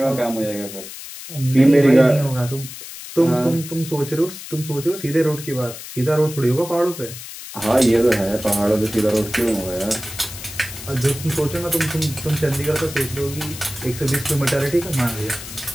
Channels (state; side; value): noise; left; hiss, 12 dB below the sound